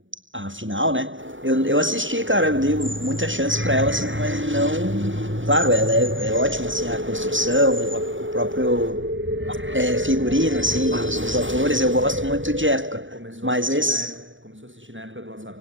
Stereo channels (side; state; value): left; late; 0.56 ms